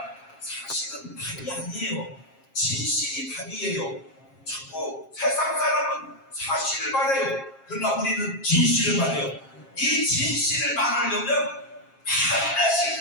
사실은 답이 아니에요. 진실이 답이에요. 자꾸 세상 사람은 사실을 말해요. 그러나 우리는 진실을 말해요. 이 진실을 말하려면 반드시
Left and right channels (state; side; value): late; right; 7.4 ms